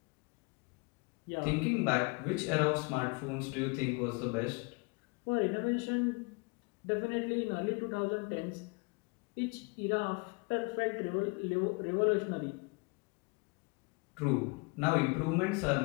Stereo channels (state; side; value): quieter; right; 29.5 dB